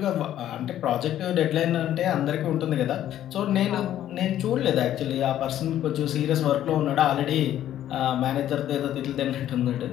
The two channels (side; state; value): right; quieter; 11.9 dB